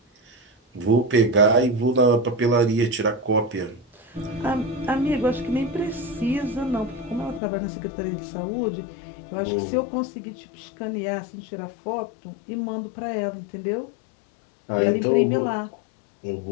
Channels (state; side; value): drops out; right; at 7.4 s